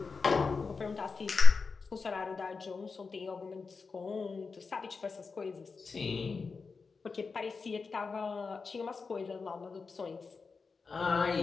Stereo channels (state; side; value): quieter; right; 4.7 dB